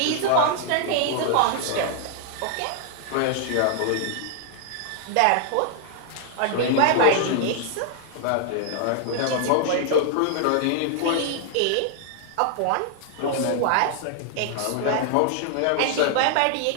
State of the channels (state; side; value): different; both; correlation 0.00